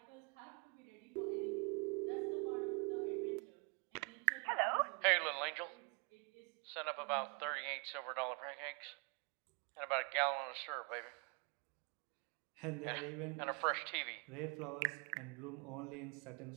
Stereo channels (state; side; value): quieter; left; 34.1 dB